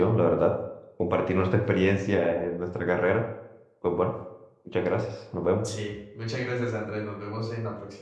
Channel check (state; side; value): identical; both; correlation 1.00